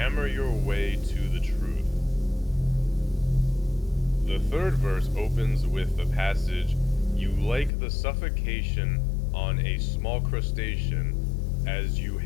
your way to the truth. The third verse opens with the passage, "You like the suffocation on a small crustacean as you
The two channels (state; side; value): drops out; right; at 7.7 s